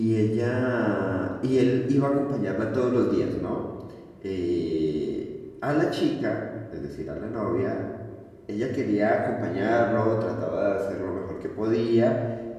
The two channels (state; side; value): identical; both; correlation 1.00